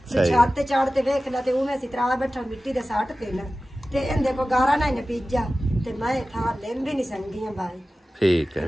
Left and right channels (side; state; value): both; normal; correlation 0.96